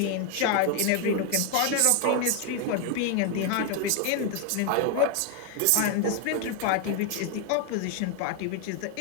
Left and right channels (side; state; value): both; different; correlation 0.01